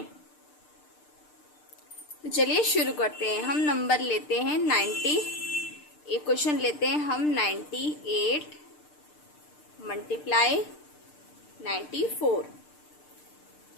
तो चलिए शुरू करते हैं। हम नंबर लेते हैं 90। एक क्वेश्चन लेते हैं हम 98 मल्टीप्लाई 94।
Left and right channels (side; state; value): right; late; 6.7 ms